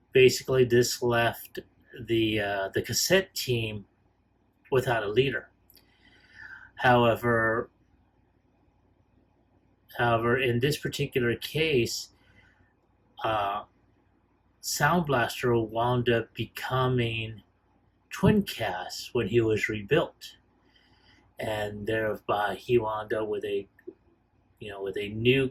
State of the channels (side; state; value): both; identical; correlation 1.00